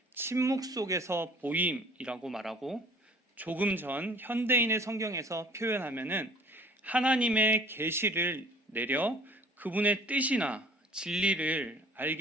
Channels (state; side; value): normal; both; correlation 0.52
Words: 침묵 속에서 보임이라고 말하고, 조금 전 현대인의 성경에서 표현하면은 하나님의 계시를 내려 그분의 뜻이나 진리를